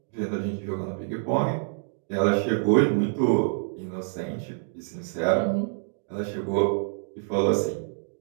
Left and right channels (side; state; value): left; silent; digital silence